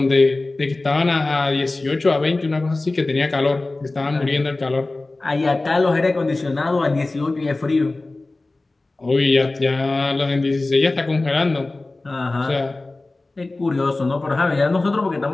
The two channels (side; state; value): right; quieter; 3.1 dB